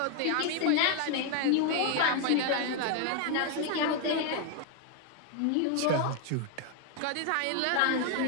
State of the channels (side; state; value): both; different; correlation 0.01